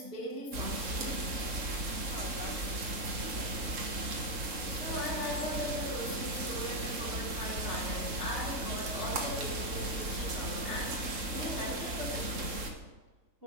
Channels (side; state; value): left; late; 3.7 ms